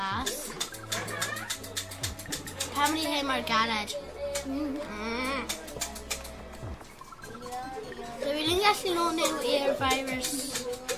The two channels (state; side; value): identical; both; correlation 1.00